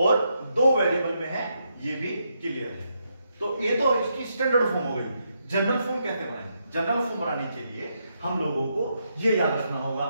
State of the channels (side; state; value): both; inverted; correlation -0.80